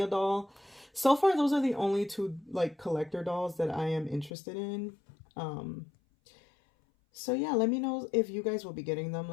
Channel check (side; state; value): right; drops out; at 4.3 s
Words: doll. So far, those are the only two, like, collector dolls that I am interested in. So yeah, let me know if you guys will be getting them.